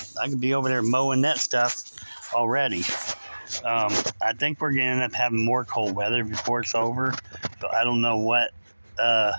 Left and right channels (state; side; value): inverted; both; correlation -1.00